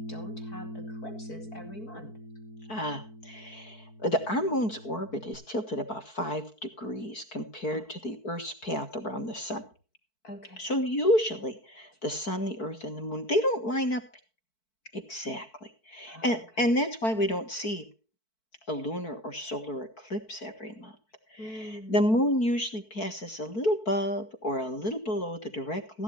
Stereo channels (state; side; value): late; right; 4.6 ms